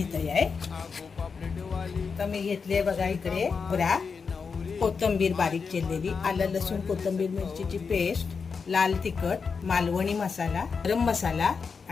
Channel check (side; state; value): right; quieter; 5.4 dB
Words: आहे। तर मी घेतले बघा इकडे बरा कोथिंबीर बारीक चिरलेली, आलं लसूण कोथिंबीर मिरचीची पेस्ट, लाल तिखट, मालवणी मसाला, गरम मसाला